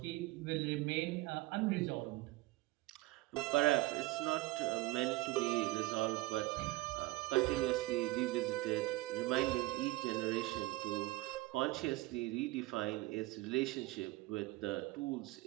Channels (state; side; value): quieter; left; 19.9 dB